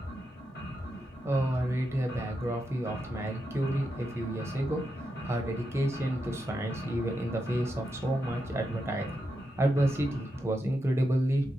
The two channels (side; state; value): both; normal; correlation 0.85